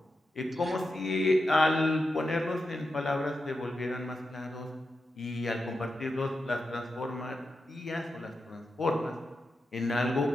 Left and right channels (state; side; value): normal; both; correlation 0.89